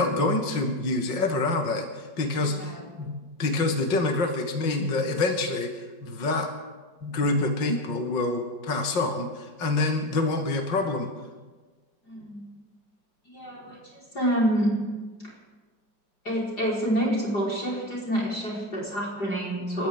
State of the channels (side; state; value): right; late; 5.5 ms